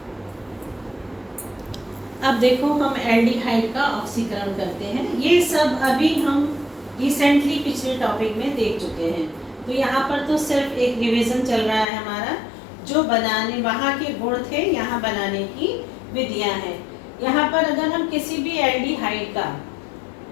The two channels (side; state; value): right; drops out; at 11.9 s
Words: अब देखो हम एल्डिहाइड का ऑक्सीकरण करते हैं। ये सब अभी हम रिसेंटली पिछले टॉपिक में देख चुके हैं। तो यहाँ पर तो सिर्फ एक रिवीजन चल रहा है हमारा, जो बनाने वहाँ के गुण थे, यहाँ बनाने की विधियाँ हैं। यहाँ पर अगर हम किसी भी एल्डिहाइड का